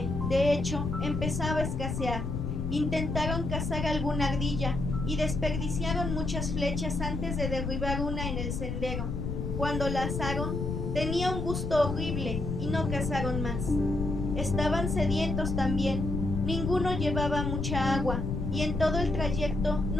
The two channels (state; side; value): noise; left; rumble, 2 dB below the sound